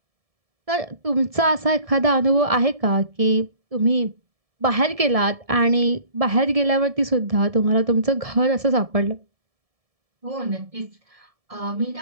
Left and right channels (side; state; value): left; late; 1.7 ms